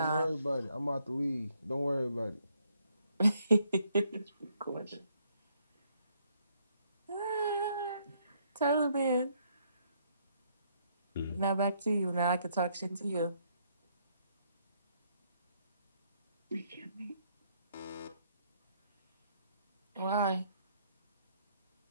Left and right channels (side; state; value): both; inverted; correlation -0.71